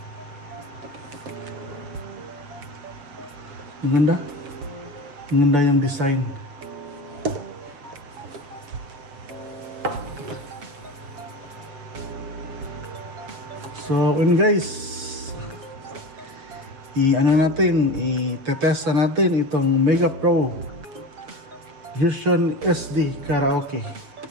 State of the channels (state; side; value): late; left; 6.9 ms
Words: Maganda yung design. So guys, i-test natin itong Mega Pro Vision SD Karaoke.